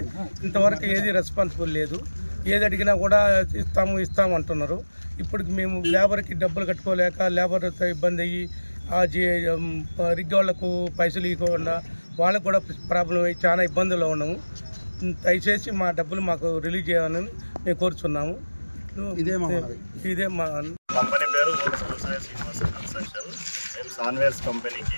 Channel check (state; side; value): inverted; both; correlation -1.00